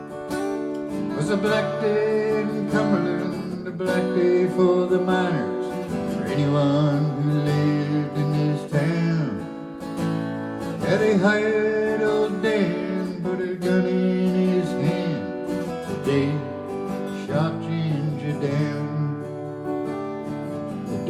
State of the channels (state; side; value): identical; both; correlation 1.00